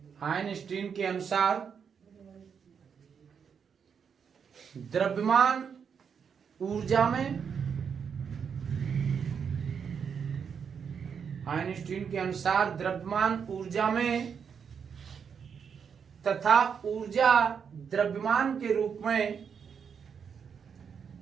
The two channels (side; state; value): left; quieter; 6.8 dB